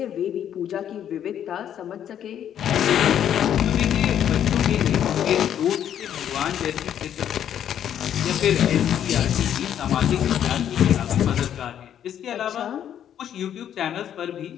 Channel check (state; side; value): quieter; right; 9.9 dB